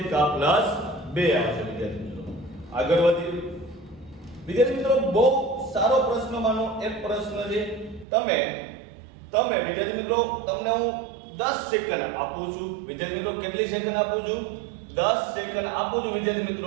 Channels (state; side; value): drops out; left; at 8.1 s